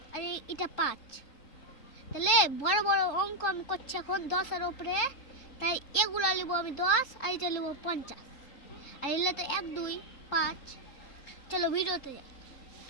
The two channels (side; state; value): right; late; 3.8 ms